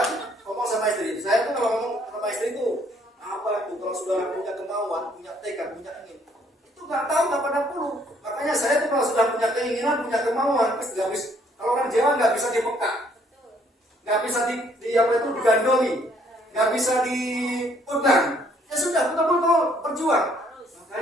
ngomong sama istri. Saya tuh kalau ngomong sama istri itu apa tuh kalau sudah punya kemauan, punya tekad, punya ingin, itu nggak tahu kapan puluh. Makanya saya tuh kalau sudah punya keinginan, punya kemauan, pasti nggak bisa. Kalau orang Jawa nggak bisa dipekak, nggak bisa digandoli, nggak bisa dipegang. Ya sudah, betul-betul berjuang.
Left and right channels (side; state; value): both; normal; correlation 0.65